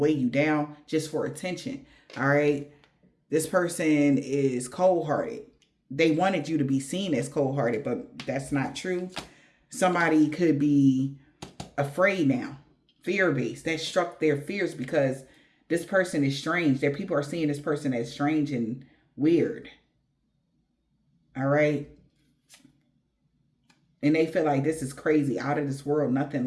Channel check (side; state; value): both; identical; correlation 1.00